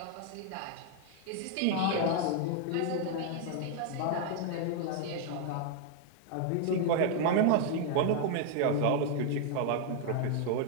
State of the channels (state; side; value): different; both; correlation 0.00